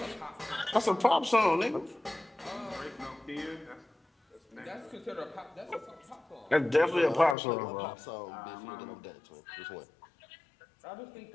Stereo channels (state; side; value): drops out; right; at 7.4 s